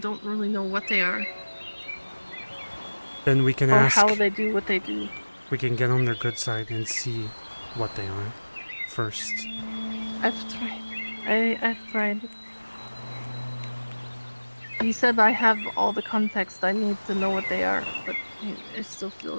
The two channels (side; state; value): both; inverted; correlation -1.00